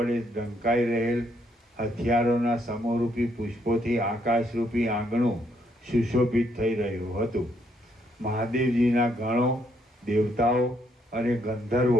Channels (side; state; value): both; normal; correlation 0.73